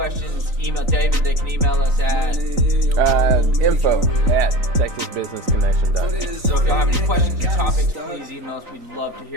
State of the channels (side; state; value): left; late; 3.9 ms